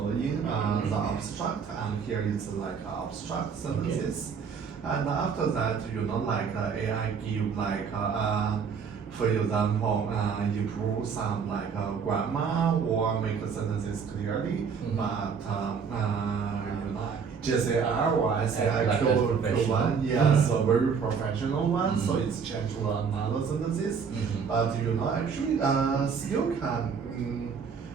the abstract, and here it's like abstract sentences, and after that like AI give like for example improve some like grammar or make the sentences clearly, but JCR or SAI Like a professional. Q1, yes, a very professional one, so it's changed to another sentences. But actually, still can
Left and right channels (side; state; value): left; quieter; 6.2 dB